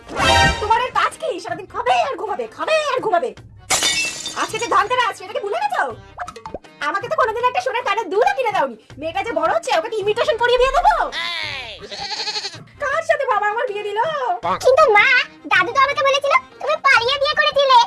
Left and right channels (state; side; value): identical; both; correlation 1.00